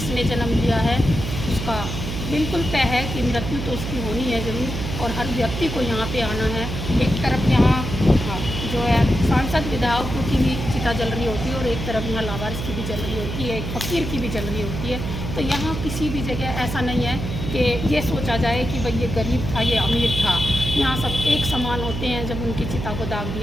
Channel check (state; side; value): noise; right; hum, 5 dB below the sound